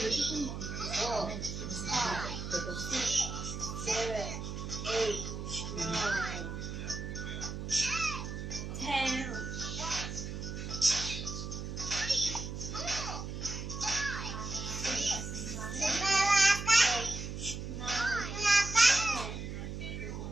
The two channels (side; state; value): right; noise; hum, 6 dB below the sound